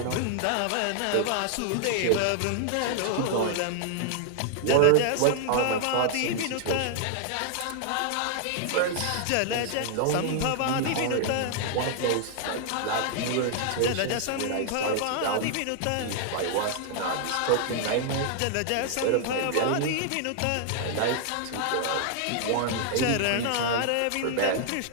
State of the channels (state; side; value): different; both; correlation -0.01